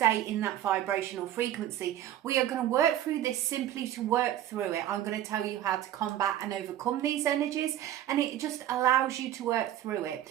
in that vibrational frequency. We are going to work through this simply to work through it. I'm going to tell you how to combat and overcome these energies, and it just allows you to work through it.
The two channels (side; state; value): left; quieter; 12.2 dB